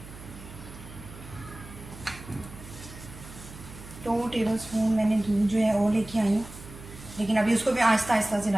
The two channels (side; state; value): right; noise; hum, 16 dB below the sound